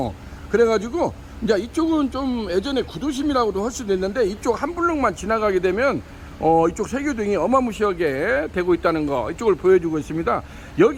그래가지고 이제 이쪽은 좀 예전에 구도심이라고도 할 수도 있는데, 이쪽 한 블록만 지나가게 되면 이쪽 세교동이 어마무시하게 되고 있다는 거, 이쪽을 보여주고 있습니다.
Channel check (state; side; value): identical; both; correlation 1.00